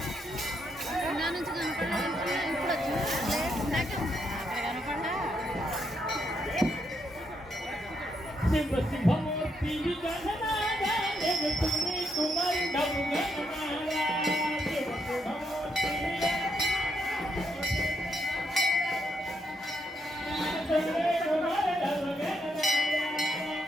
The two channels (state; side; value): normal; both; correlation 0.78